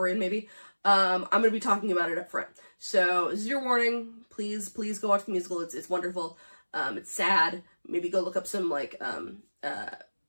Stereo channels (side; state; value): both; inverted; correlation -1.00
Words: in maybe. I'm going to be talking about it up front. So this is your warning. Please go watch the musical. It's wonderful. It's sad. Maybe go look up some like